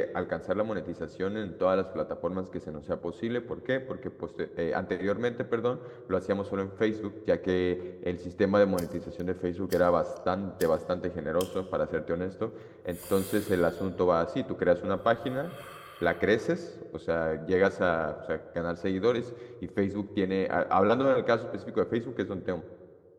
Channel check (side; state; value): both; identical; correlation 1.00